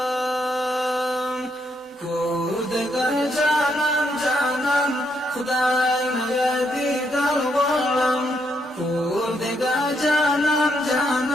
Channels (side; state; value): both; normal; correlation 0.76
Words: کور دې دا جانان جانان خدای مې دې درولم کور دې دا جانان